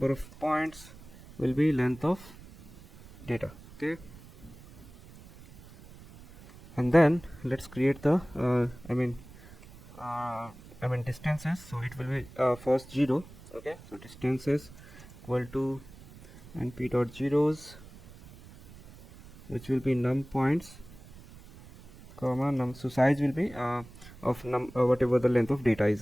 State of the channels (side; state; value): right; noise; rumble, 19 dB below the sound